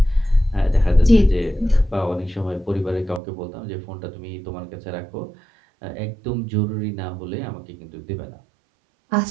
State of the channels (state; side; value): drops out; left; at 3.2 s